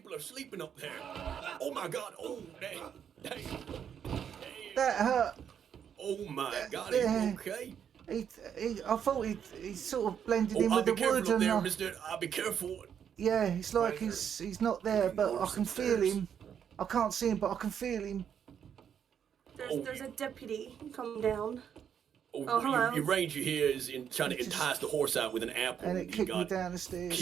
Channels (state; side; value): quieter; left; 8.3 dB